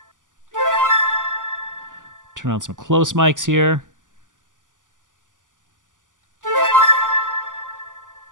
Turn on some close mics here.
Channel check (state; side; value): late; left; 0.87 ms